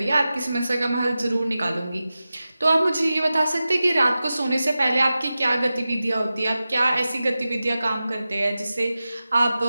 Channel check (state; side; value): inverted; both; correlation -0.94